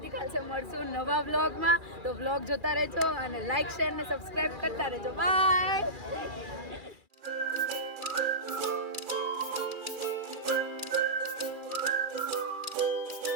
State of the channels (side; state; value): left; late; 2.4 ms